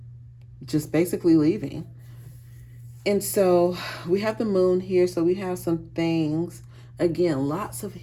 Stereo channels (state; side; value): identical; both; correlation 1.00